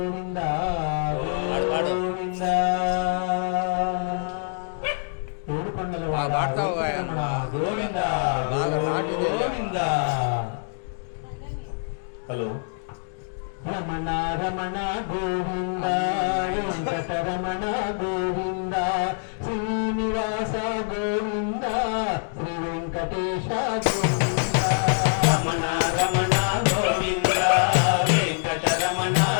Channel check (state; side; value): silent; right; digital silence